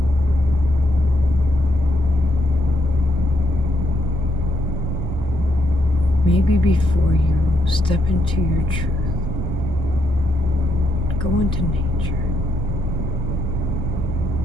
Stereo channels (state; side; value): normal; both; correlation 0.78